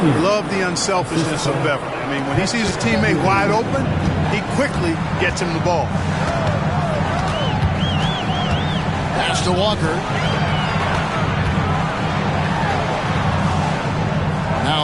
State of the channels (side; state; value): both; identical; correlation 1.00